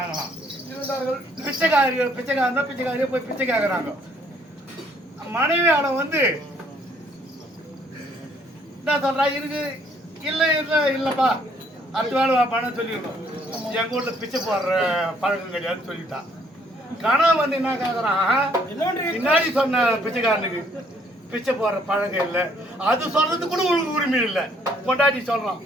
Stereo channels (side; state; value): both; normal; correlation 0.65